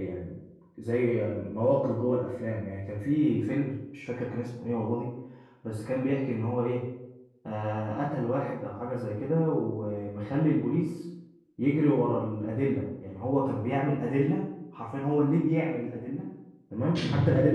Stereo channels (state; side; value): identical; both; correlation 1.00